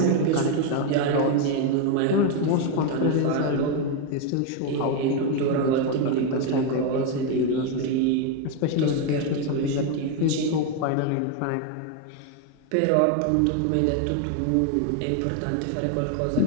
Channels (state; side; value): different; both; correlation 0.01